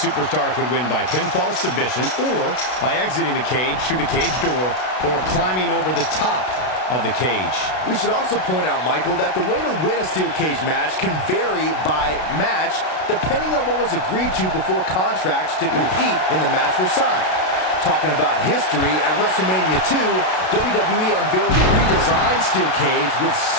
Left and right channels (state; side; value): late; right; 32 ms